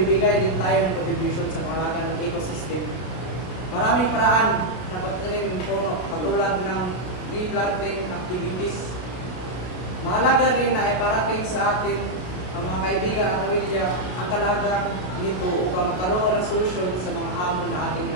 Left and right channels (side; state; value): right; late; 32 ms